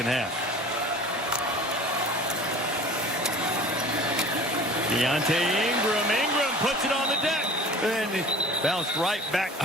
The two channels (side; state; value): both; normal; correlation 0.43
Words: half. Deontay Ingram puts it on the deck, and it bounced right back to